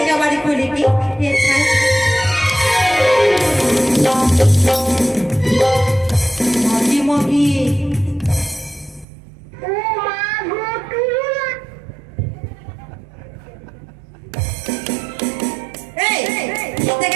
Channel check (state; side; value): drops out; left; at 9.1 s